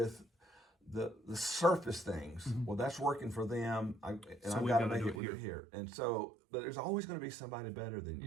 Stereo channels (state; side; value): drops out; left; at 5.2 s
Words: the surface things. Well, that's working for them, and I've got to make it here. And so, but there's always going to be somebody better than